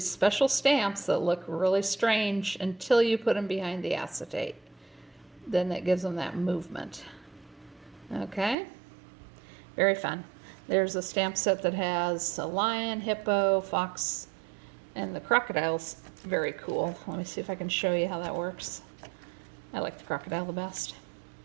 special stamps that look really strange until you put them behind the acetate. Then that gives them that movement. Okay, very fun. There's a stamp set that has a lion, hippo, fox, and the crocodile's very cool. Let me see if I can show you how that works. I like the crocodile the best.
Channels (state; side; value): drops out; left; at 8.6 s